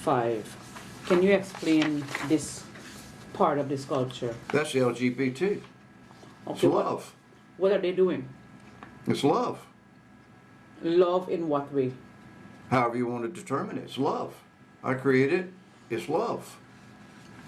Can you explain this part of the sculpture? That's LGBT. It's Okay, love. What are they doing? It's love. Love in what way? However you want to determine it, it's love. I created it, it's love.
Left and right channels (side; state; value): both; identical; correlation 1.00